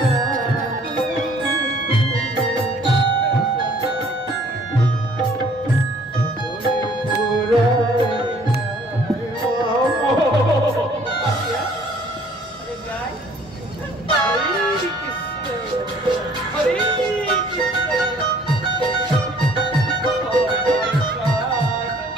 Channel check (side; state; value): both; normal; correlation 0.57